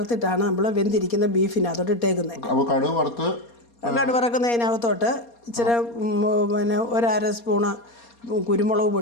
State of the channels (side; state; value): right; late; 4.2 ms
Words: നമ്മൾ വെന്തിരിക്കുന്ന ബീഫിനകത്തോട്ട് ഇട്ടേക്കുന്നത്. അപ്പോൾ കടു വറുക്കുന്നതിനകത്തോട്ട് ഇച്ചിരി പിന്നെ 1/2 സ്പൂണ് കുരുമുളക്